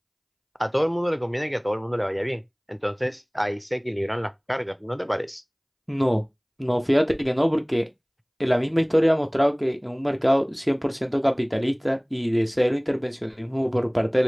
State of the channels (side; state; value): both; identical; correlation 1.00